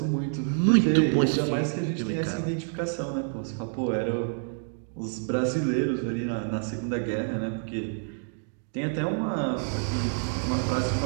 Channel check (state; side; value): silent; left; digital silence